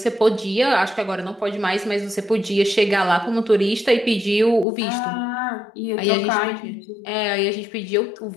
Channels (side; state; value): right; drops out; at 4.7 s